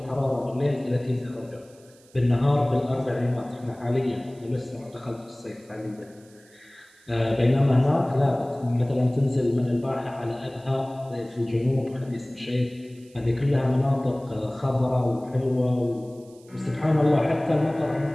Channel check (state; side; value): noise; right; hiss, 29 dB below the sound